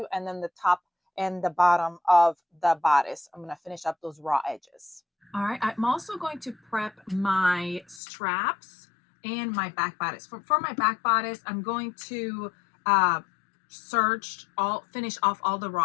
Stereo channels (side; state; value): right; drops out; at 8.0 s